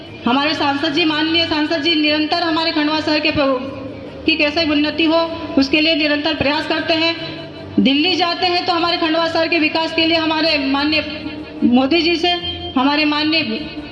हमारे सांसद जी, माननीय सांसद जी निरंतर हमारे खंडवा शहर की कैसे उन्नति हो उसके लिए निरंतर प्रयास करते हैं। दिल्ली जाते हैं तो हमारे खंडवा शहर के विकास के लिए हमारे माननीय मोदी जी से, हमारे माननीय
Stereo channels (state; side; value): identical; both; correlation 1.00